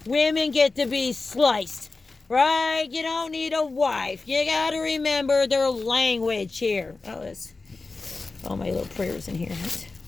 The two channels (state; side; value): quieter; right; 3.8 dB